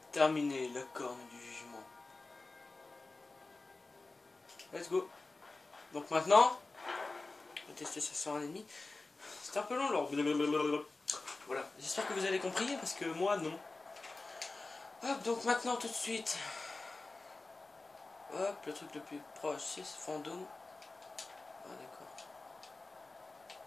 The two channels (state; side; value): quieter; right; 3.4 dB